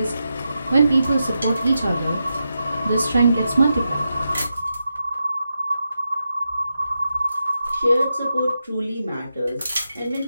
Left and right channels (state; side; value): inverted; both; correlation -0.88